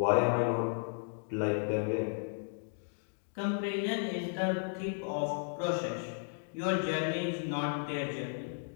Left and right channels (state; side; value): silent; right; digital silence